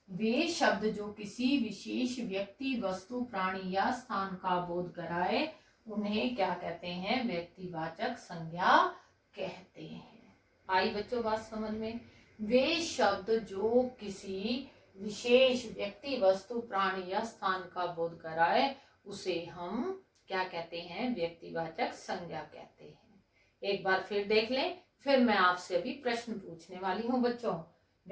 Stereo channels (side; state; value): both; identical; correlation 1.00